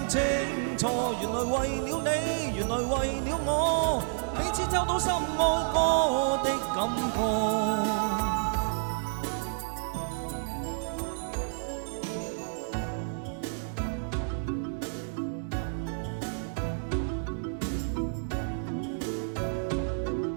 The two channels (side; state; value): left; silent; digital silence